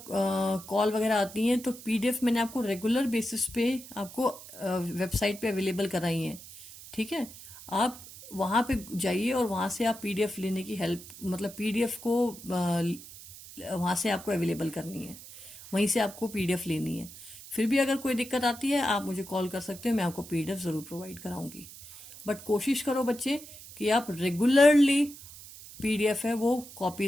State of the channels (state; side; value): noise; right; hiss, 16 dB below the sound